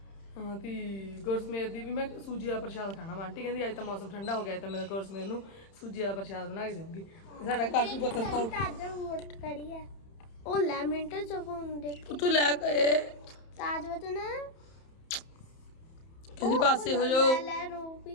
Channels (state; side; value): late; right; 31 ms